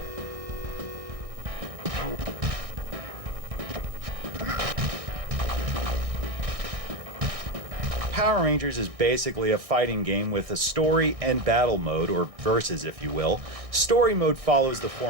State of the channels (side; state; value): left; late; 1.6 ms